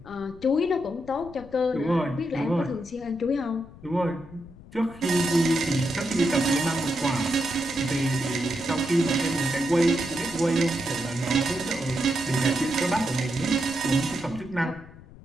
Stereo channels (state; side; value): noise; left; rumble, 20 dB below the sound